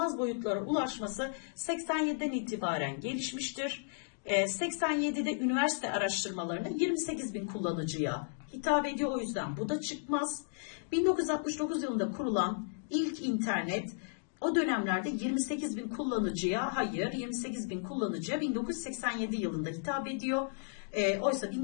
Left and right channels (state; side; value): silent; right; digital silence